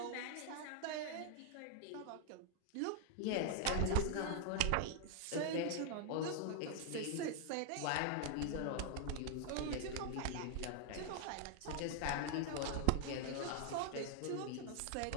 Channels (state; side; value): different; both; correlation 0.00